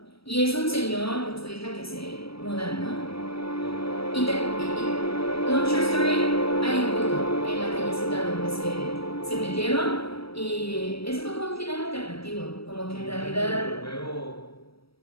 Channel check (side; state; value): right; late; 0.76 ms